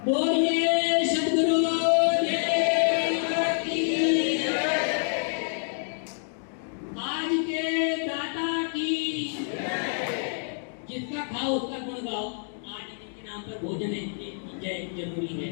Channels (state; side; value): silent; right; digital silence